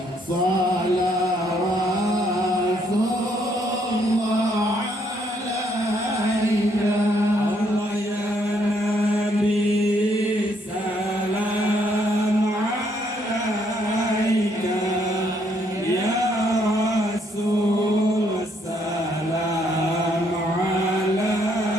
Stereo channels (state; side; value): normal; both; correlation 0.70